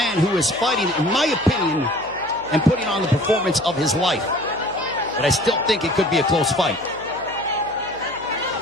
who is fighting, in my opinion, and putting on the performance of his life. But I still think it could be a close fight.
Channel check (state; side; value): noise; right; hum, 22 dB below the sound